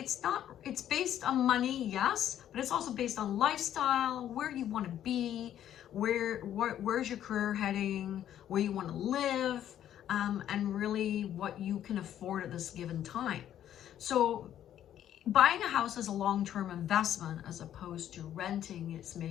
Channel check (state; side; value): quieter; right; 11.0 dB